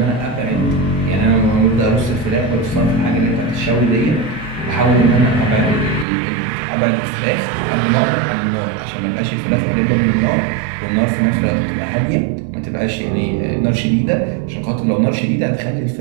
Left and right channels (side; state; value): left; drops out; at 6.1 s